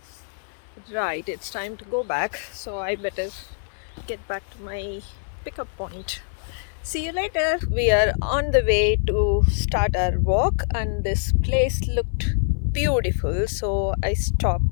Right, it's time to go back, so I better get back to my pickup point. See you later. We are on the way to start our walk and this place looked beautiful, so I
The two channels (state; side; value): silent; right; 56 dB below the other